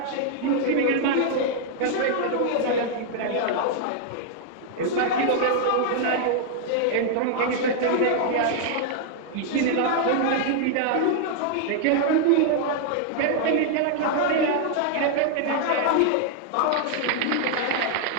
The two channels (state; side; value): different; both; correlation 0.00